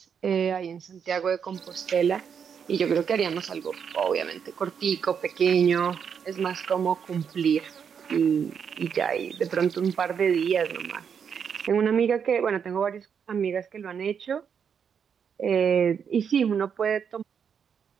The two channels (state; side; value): quieter; left; 7.2 dB